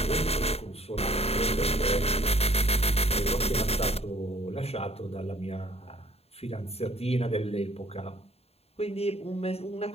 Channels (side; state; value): right; late; 0.29 ms